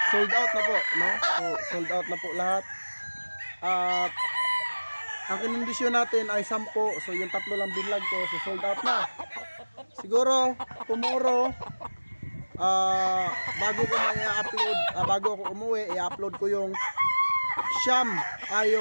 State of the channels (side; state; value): both; inverted; correlation -1.00